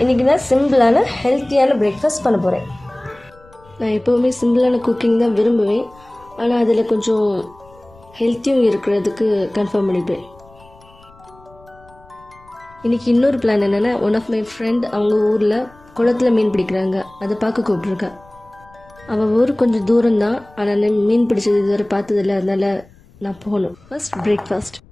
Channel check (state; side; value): noise; left; rumble, 27 dB below the sound